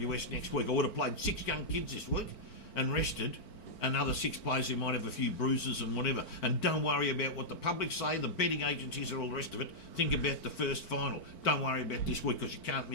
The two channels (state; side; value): late; right; 4.4 ms